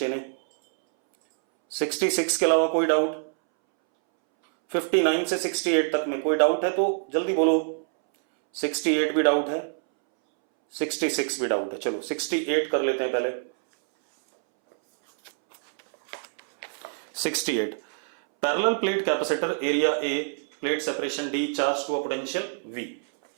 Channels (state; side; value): silent; left; 61 dB below the other